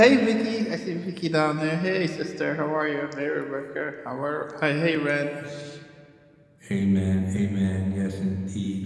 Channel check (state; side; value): identical; both; correlation 1.00